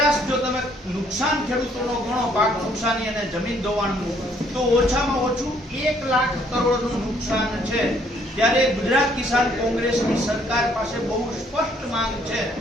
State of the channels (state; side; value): normal; both; correlation 0.65